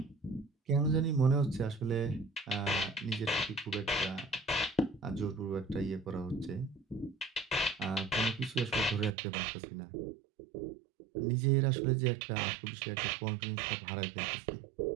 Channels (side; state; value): left; drops out; at 9.2 s